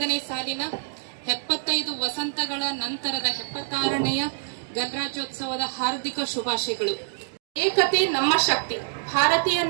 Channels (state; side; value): silent; left; digital silence